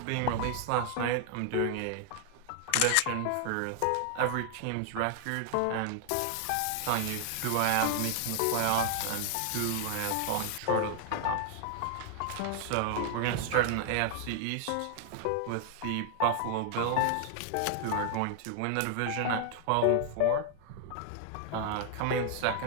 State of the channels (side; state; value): both; different; correlation 0.00